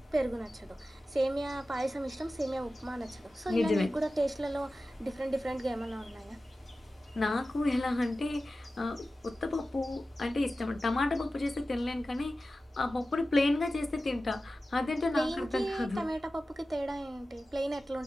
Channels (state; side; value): normal; both; correlation 0.94